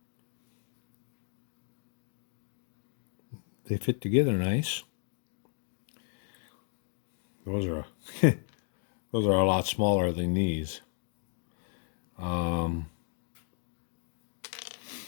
they fit together nice. Those are those are a lot smaller than these.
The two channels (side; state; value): right; silent; 55 dB below the other